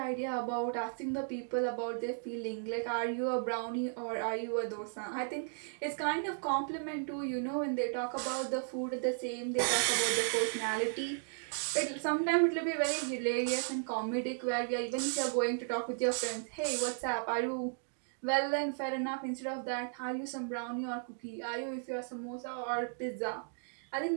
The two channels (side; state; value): left; silent; digital silence